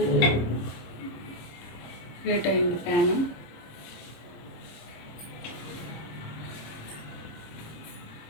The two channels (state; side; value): late; right; 26 ms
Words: హీట్ అయింది ప్యాన్.